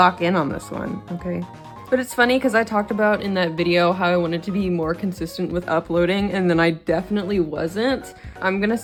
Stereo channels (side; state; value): both; identical; correlation 1.00